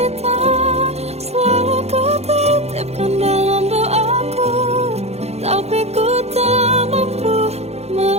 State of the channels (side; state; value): left; late; 0.31 ms